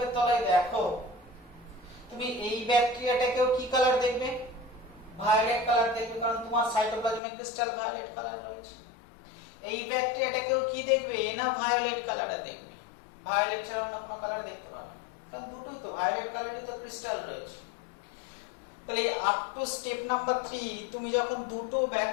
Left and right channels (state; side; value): drops out; right; at 7.2 s